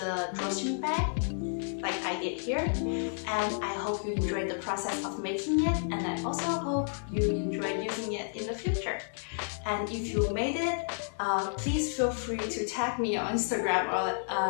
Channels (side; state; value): right; silent; 57 dB below the other